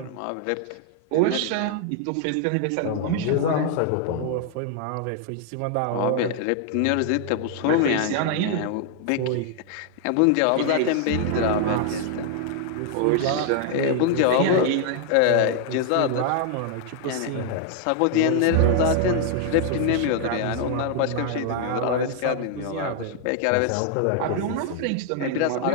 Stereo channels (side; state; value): both; different; correlation 0.00